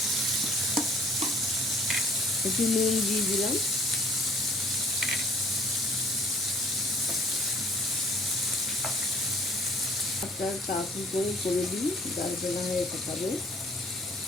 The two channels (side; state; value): both; normal; correlation 0.55